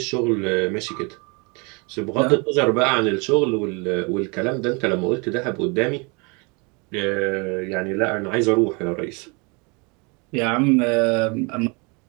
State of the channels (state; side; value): quieter; left; 30.6 dB